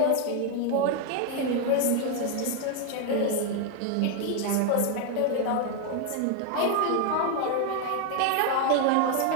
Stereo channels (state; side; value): different; both; correlation 0.01